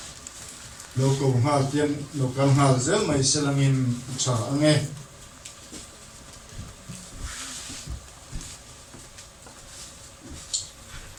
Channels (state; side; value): identical; both; correlation 1.00